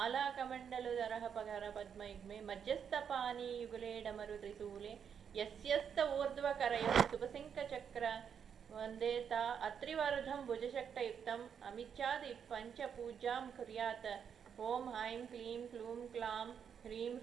कमंडलुधरः पगर पद्मयुग्मे मध्यस्थपानी युगले डमरु त्रिशूले यस्यस्त ऊर्ध्वकरयोः सुपसिंकचक्र वंदे ता अत्रिवरुधं भुजशक्तयुक्तम् अमिच्छादि पंचपूजां कुर्यात्। ओम ऐं क्लीं क्लूं क्लां ह्रीं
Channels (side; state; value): left; quieter; 7.6 dB